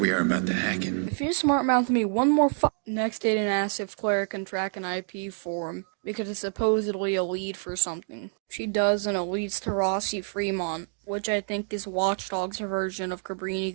are about to hack it. If you smart mouth me one more Next, Aiden asks if Claire can track an IP for him, because it's supposedly a lead for something. She does, and it leads to Rossi Fremont, which I think is Watch Dogs' version of Cabrini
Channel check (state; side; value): silent; left; 56 dB below the other